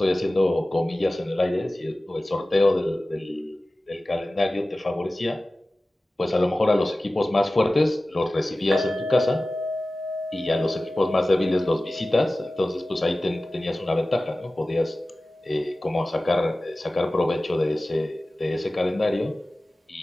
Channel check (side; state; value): both; normal; correlation 0.97